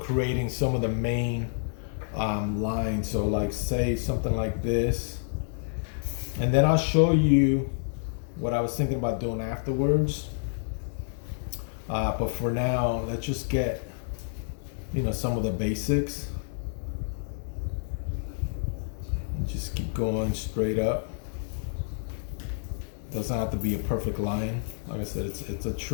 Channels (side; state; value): right; silent; digital silence